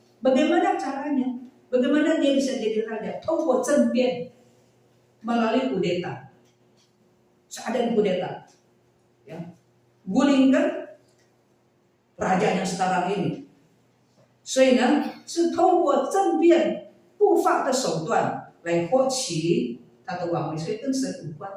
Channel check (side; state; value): both; identical; correlation 1.00